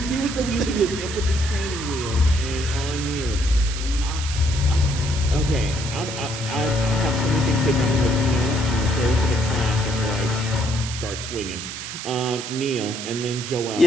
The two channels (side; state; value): right; noise; hiss, 8 dB below the sound